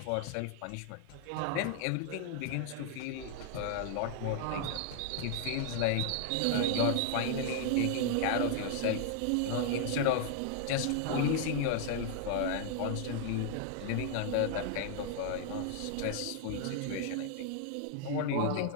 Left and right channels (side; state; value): both; different; correlation 0.00